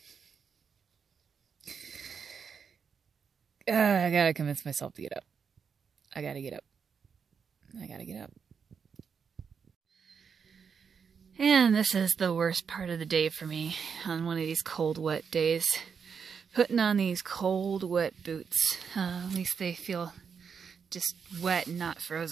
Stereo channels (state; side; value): quieter; left; 6.4 dB